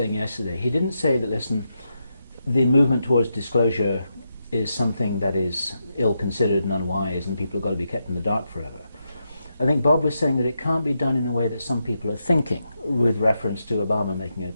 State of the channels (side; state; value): both; inverted; correlation -0.84